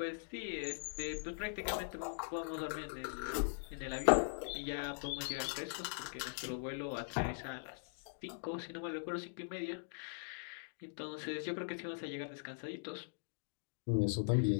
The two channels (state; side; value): silent; right; digital silence